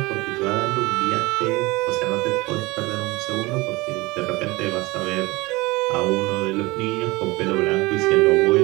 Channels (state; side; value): quieter; left; 22.3 dB